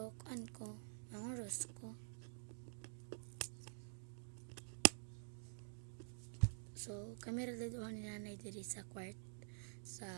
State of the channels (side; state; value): left; silent; digital silence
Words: ko, ang oras ko. So, kami radaduhan ni nanay diri sa kwart sa